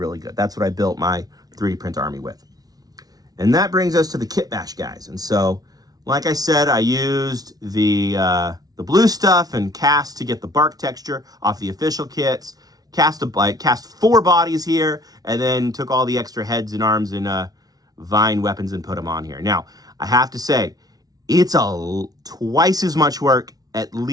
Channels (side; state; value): left; late; 0.18 ms